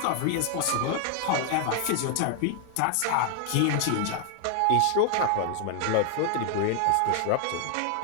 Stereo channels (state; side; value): different; both; correlation 0.00